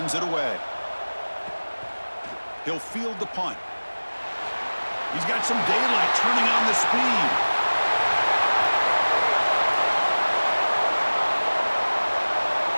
it away. He'll field the punt. He's got some daylight turning on the speed.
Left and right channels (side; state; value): both; inverted; correlation -1.00